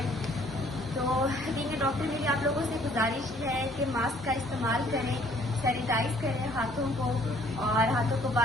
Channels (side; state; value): both; normal; correlation 0.60